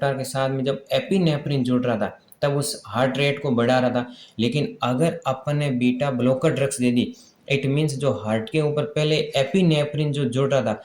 के साथ में जब एपिनेफ्रिन जुड़ रहा था तब उस हार्ट रेट को बढ़ा रहा था। लेकिन अगर अपन ने beta blocker drugs they the, it means जो हार्ट के ऊपर पहले एपिनेफ्रिन जो जुड़ रहा था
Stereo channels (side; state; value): both; identical; correlation 1.00